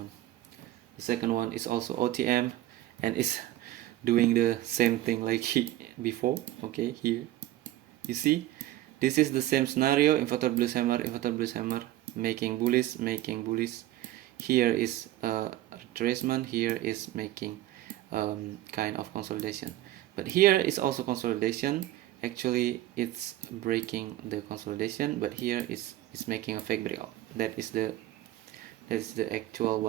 The second one is also OTM and is doing the same thing like before. Okay, here you see this is the same scenario, inverted bullish hammer, making bullish. Here is retracement, here is making kind of consolidation, but here is also consolidation. Actually it's breaking the consolidation, but here is making a fake breakout. That is the actual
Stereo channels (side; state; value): left; quieter; 15.0 dB